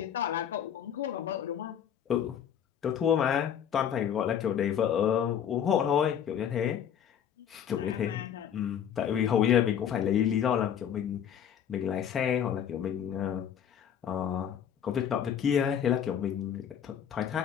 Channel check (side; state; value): right; quieter; 8.9 dB